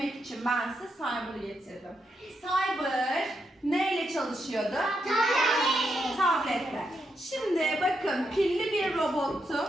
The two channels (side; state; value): both; normal; correlation 0.82